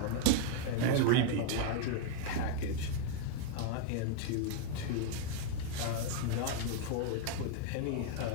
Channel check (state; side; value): different; both; correlation 0.00